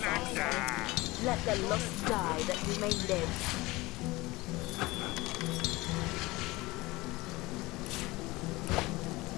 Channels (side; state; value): right; quieter; 21.3 dB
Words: Let the lost die that you may live.